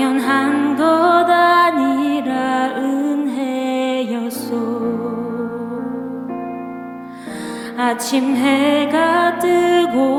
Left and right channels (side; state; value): both; identical; correlation 1.00